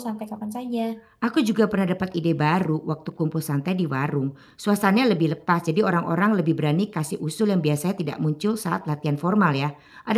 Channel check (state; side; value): identical; both; correlation 1.00